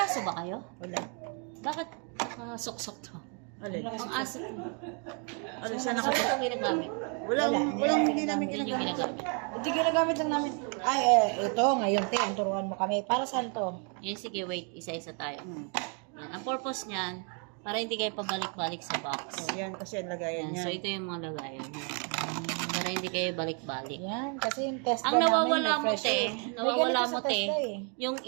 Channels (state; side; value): quieter; left; 38.7 dB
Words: ba kayo? Wala. Bakit suksok to? Alin? Ang aso ko. Alin, Saan saan ito ginagamit? Walang hindi namin Yun yung ginagamit. ginagamit. Hindi ginagamit lang namin. Ay, ito, ngayon, ang turuan mo kami. Para saan to? Yan, sige, wait. Isa-isa tayo. Yan. Ang purpose niyan, para hindi kayo pabalik-balik sa box. Yan, kasi ang lagayan Yan. niya. So, ito yung mga lagayan. Para hindi kayo balik-balik. Yan, kasi yung test Ang nawawala mo, te, nawawala mo, te, eh. yung